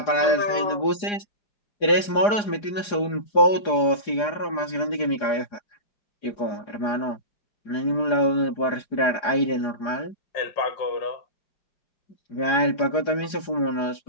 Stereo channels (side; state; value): right; late; 4.9 ms